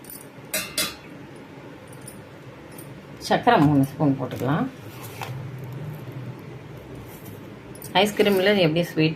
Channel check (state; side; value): identical; both; correlation 1.00